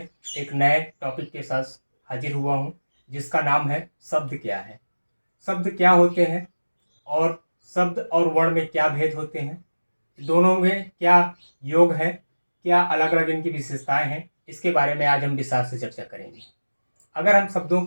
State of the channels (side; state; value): both; inverted; correlation -1.00